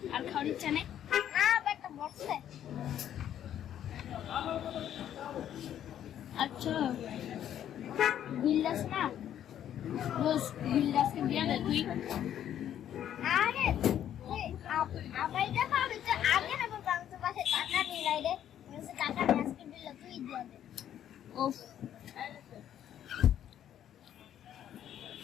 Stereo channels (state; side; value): quieter; right; 10.5 dB